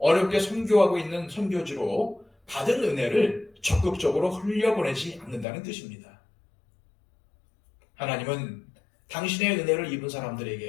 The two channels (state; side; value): drops out; right; at 5.5 s